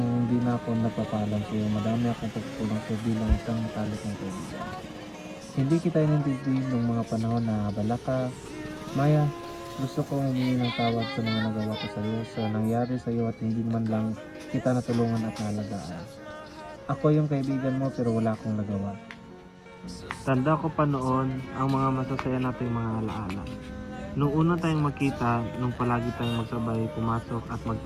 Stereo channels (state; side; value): identical; both; correlation 1.00